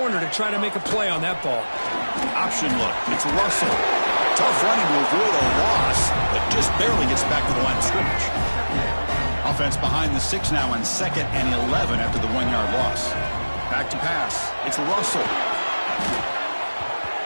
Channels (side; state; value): both; inverted; correlation -1.00